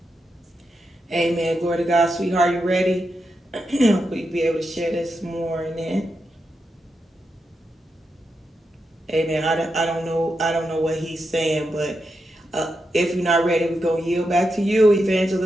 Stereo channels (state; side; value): normal; both; correlation 0.86